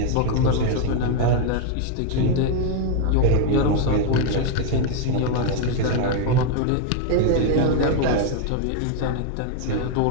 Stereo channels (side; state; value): both; different; correlation 0.00